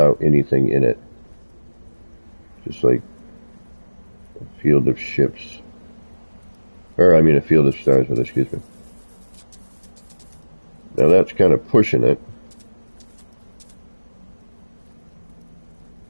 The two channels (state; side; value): inverted; both; correlation -1.00